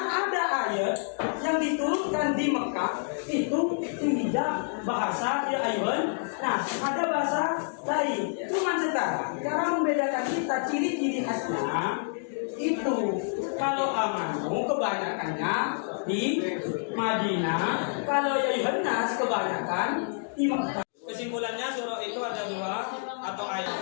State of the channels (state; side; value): silent; right; digital silence